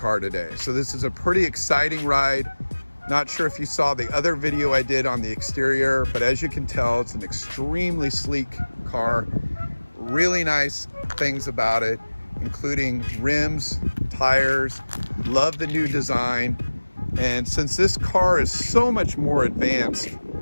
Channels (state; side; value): inverted; both; correlation -1.00